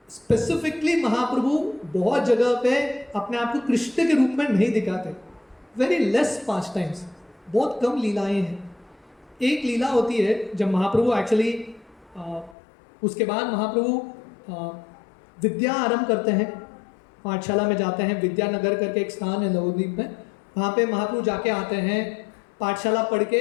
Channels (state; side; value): drops out; right; at 12.6 s